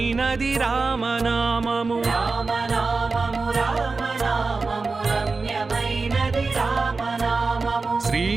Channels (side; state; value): left; quieter; 4.0 dB